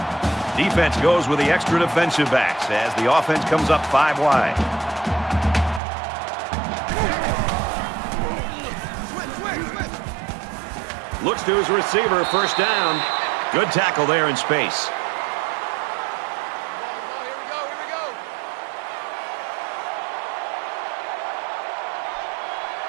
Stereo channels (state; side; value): drops out; left; at 5.8 s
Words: Defense goes with the extra defensive backs as the offense comes up 5 wide. Looks to his receiver, 1st down. Good tackle there in space.